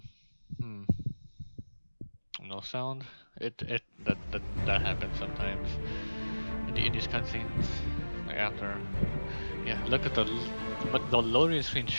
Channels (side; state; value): both; inverted; correlation -1.00